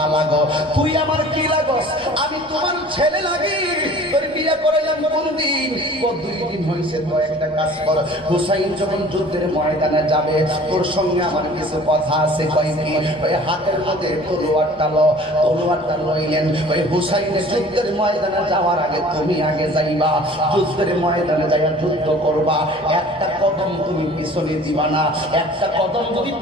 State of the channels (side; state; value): both; normal; correlation 0.47